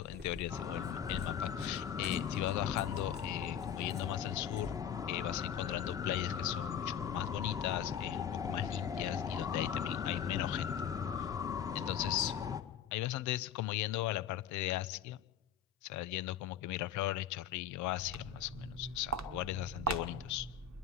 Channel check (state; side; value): quieter; right; 8.6 dB